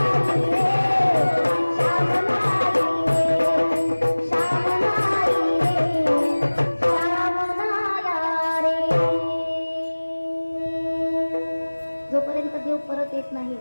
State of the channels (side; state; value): both; inverted; correlation -1.00